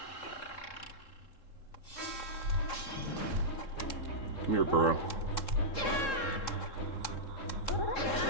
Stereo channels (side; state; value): right; late; 3.7 ms